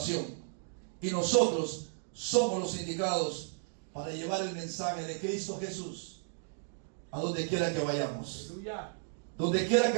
y nosotros somos los indicados para llevar el mensaje de Cristo Jesús a donde quiera que vayamos. Aleluya. Donde quiera que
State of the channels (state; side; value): silent; left; digital silence